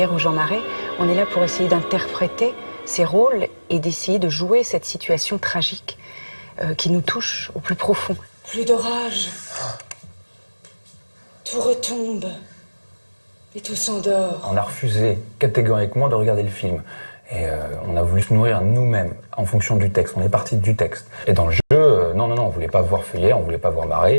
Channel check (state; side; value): inverted; both; correlation -1.00